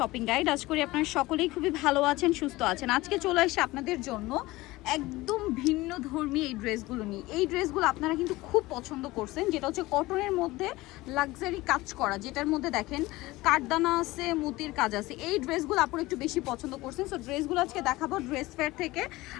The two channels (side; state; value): right; quieter; 19.5 dB